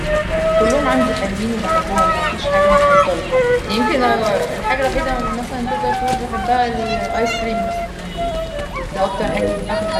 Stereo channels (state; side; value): identical; both; correlation 1.00